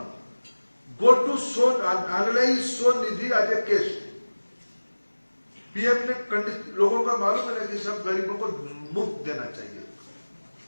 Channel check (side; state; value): both; inverted; correlation -1.00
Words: go to analyse Svanidhi as a case. PM ने लोगों का मालूम है कि सब गरीबों को मुफ्त देना चाहिए,